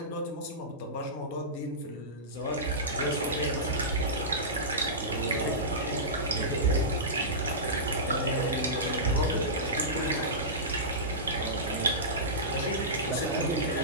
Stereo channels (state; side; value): normal; both; correlation -0.18